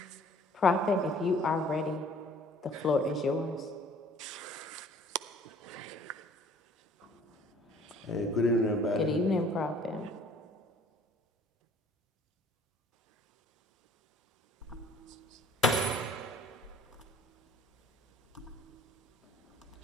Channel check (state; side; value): normal; both; correlation 0.55